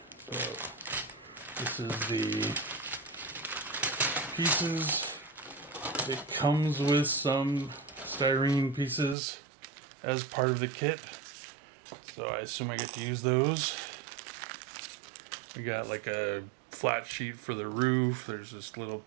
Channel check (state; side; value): drops out; left; at 9.2 s